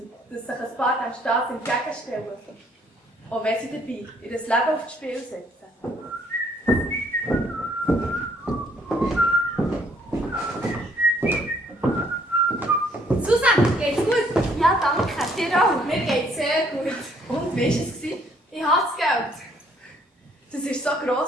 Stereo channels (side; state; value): both; normal; correlation 0.65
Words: dass sich ein paar dem Staat entgegenstellen, auch wenn sie dabei ihr Leben aufs Spiel setzen. Susanne, geht's gut? Ja, danke. Dir auch? Mir geht's sehr gut. Und wie war es? Ich habe das Geld. Das ist so